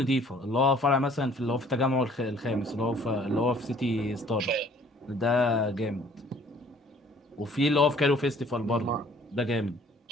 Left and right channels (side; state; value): both; normal; correlation 0.57